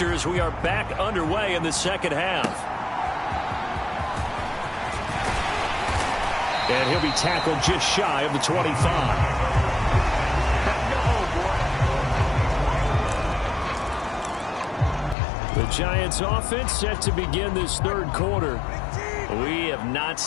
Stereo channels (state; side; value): drops out; right; at 15.2 s